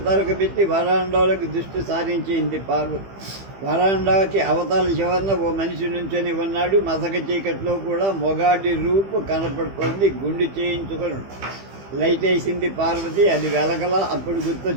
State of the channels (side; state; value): left; late; 15 ms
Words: పెట్టి వరాండాలోకి దృష్టి సారించింది పార్వతి. వరాండాకి అవతల చివరన ఓ మనిషి నుంచొని ఉన్నాడు. మసక చీకట్లో కూడా మొగాడి రూపు కనపడుతోంది. గుండు చేయించుకొని లైట్ వేసింది పార్వతి. అది వెలగల. అప్పుడు